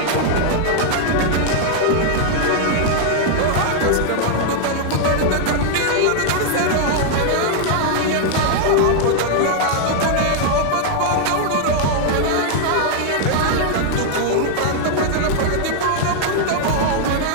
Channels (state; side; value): different; both; correlation 0.00